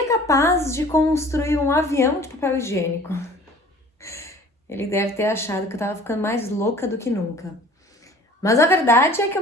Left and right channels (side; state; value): both; normal; correlation 0.48